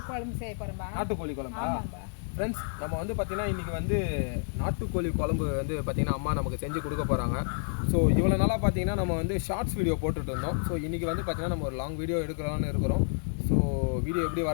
குழம்பு செய்ய போகிறோம்பா. நாட்டுக்கோழி குழம்பா? ஃப்ரெண்ட்ஸ், நம்ம வந்து பார்த்தீங்கன்னா இன்றைக்கி வந்து நாட்டுக்கோழி குழம்பு வந்து பார்த்தீங்கன்னா அம்மா நமக்கு செஞ்சு கொடுக்க போகிறாங்க. ஸோ இவ்வளோ நாளாக பார்த்தீங்கன்னா நம்ம வந்து ஷார்ட்ஸ் வீடியோ போட்டுட்டு இருந்தோம். ஸோ இன்றைக்கி வந்து பார்த்தீங்கன்னா நம்ம ஒரு லாங் வீடியோ எடுக்கலாம்னு இருக்கிறோம். ஸோ வீடியோ எப்படி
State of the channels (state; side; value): silent; right; digital silence